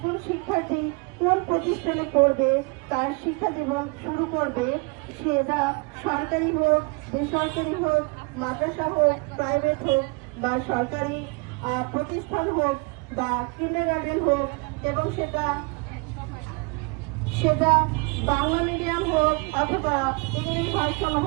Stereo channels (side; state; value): left; quieter; 29.0 dB